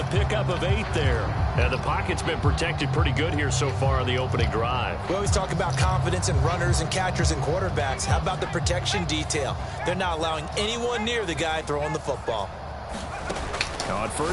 pickup of 8 there. And the pocket's been protected pretty good here so far on the opening drive. We always talk about confidence in runners and catchers and quarterbacks. How about the protection detail? They're not allowing anyone near the guy throwing the football. On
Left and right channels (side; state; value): both; identical; correlation 1.00